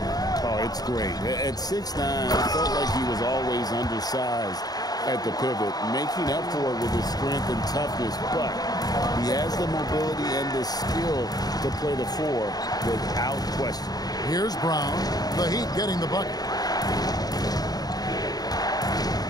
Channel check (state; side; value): late; right; 0.19 ms